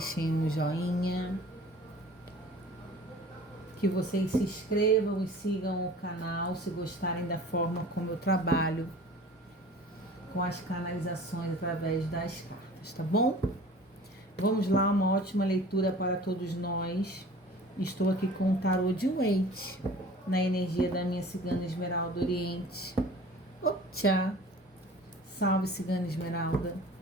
um joinha, que vocês se inscrevam e sigam o canal se gostarem da forma como eu trabalho com as canalizações através das cartas, tá bom? Vamos lá, uma ótima leitura para todos nós. Estou aqui com o tarô de Waite, na energia da minha cigana Esmeralda Oriente. Tchau! Salve, cigana Esmeralda!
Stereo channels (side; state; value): both; normal; correlation 0.44